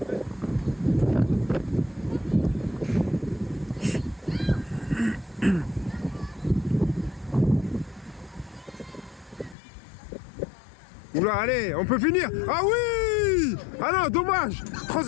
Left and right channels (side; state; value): right; drops out; at 9.6 s